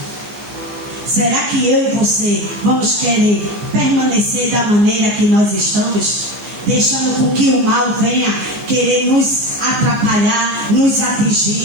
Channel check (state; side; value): late; left; 14 ms